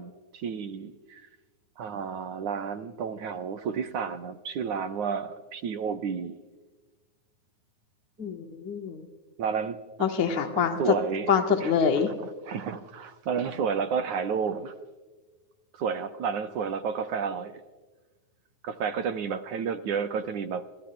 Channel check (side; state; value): left; late; 9.6 ms